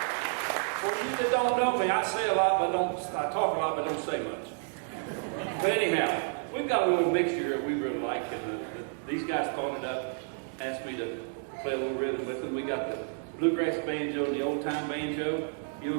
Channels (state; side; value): silent; left; 58 dB below the other